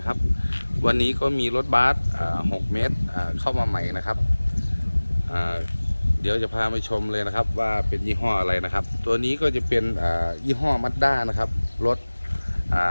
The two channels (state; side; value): inverted; both; correlation -1.00